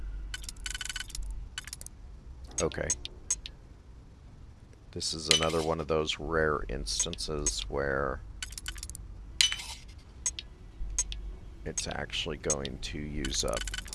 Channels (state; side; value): identical; both; correlation 1.00